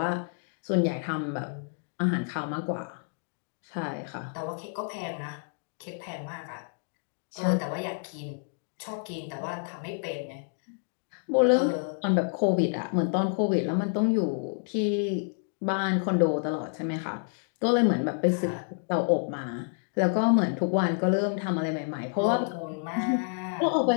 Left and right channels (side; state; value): right; silent; 59 dB below the other